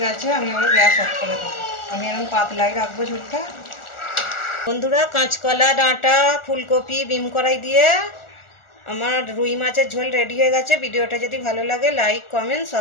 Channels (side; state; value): right; late; 1.4 ms